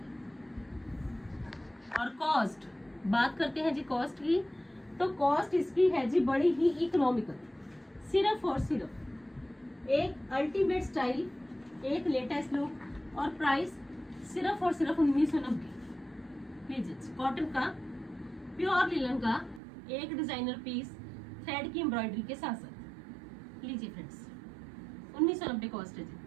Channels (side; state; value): left; drops out; at 19.6 s